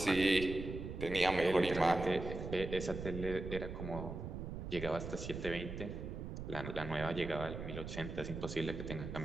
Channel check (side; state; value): right; noise; rumble, 7 dB below the sound